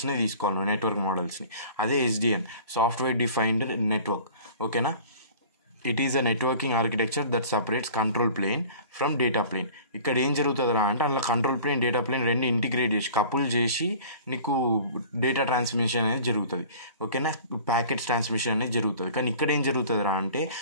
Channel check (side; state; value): both; inverted; correlation -0.44